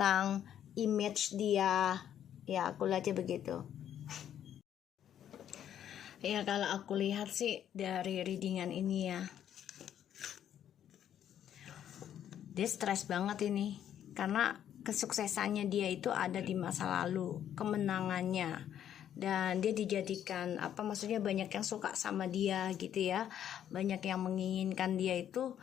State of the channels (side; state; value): right; quieter; 10.1 dB